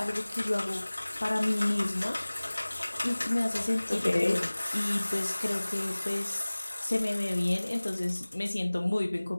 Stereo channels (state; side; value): inverted; both; correlation -1.00